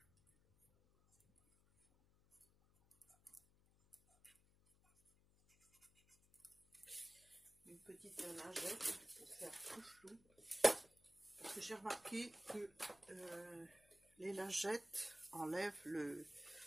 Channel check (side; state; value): left; noise; hum, 30 dB below the sound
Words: Une petite lingette pour faire tout flou. Parce que j'ai remarqué que les lingettes enlèvent